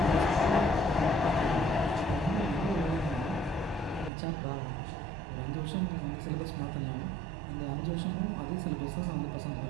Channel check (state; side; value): drops out; left; at 4.1 s